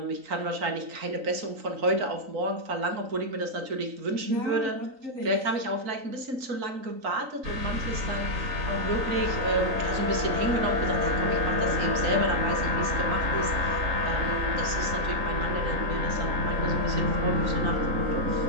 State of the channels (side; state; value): left; late; 3.9 ms